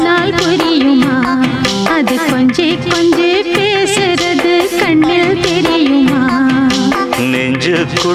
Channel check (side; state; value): both; identical; correlation 1.00